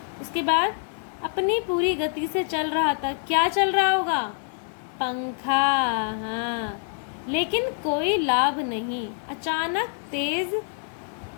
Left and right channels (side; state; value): right; silent; 60 dB below the other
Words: उसके बाद अपनी पूरी गति से चल रहा था, क्या चल रहा होगा, पंखा, हाँ, लेकिन कोई लाभ नहीं। अचानक तेज